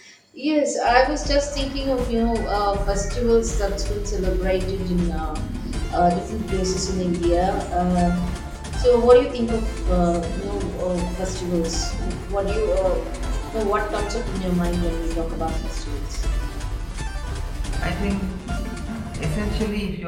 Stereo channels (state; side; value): identical; both; correlation 1.00